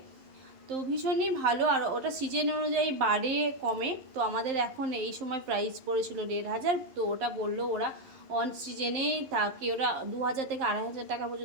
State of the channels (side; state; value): left; late; 11 ms